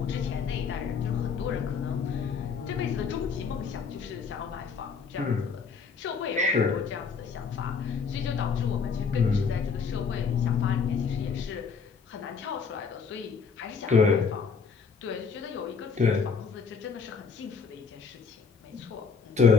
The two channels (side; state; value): right; quieter; 5.5 dB